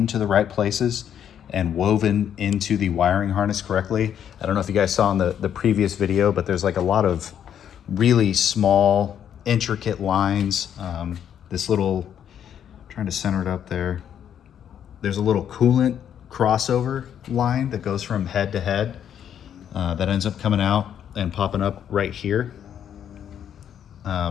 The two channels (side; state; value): right; quieter; 9.3 dB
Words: the right places and woven into the wiring harness correctly. I don't know if you guys saw in the previous video, but there's like a lot of really small, intricate lines. This little, trying to center it up there. There's a little coolant crossover line that goes from head to head that ends up coming out and popping up right here.